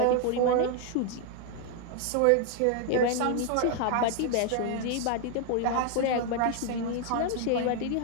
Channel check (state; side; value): different; both; correlation 0.00